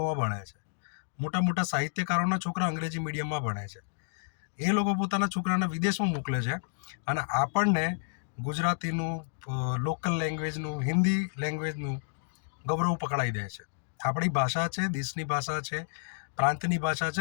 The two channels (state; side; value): silent; right; digital silence